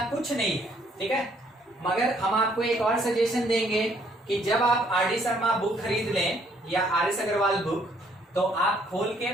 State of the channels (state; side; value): normal; both; correlation 0.66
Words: कुछ नहीं है। ठीक है, मगर हम आपको एक और सजेशन देंगे कि जब आप आर डी शर्मा बुक खरीद लें या आर एस अग्रवाल बुक, तो आप खोल